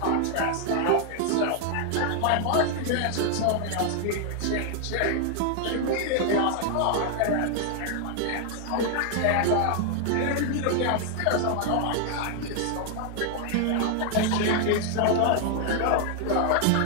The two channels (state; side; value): different; both; correlation 0.00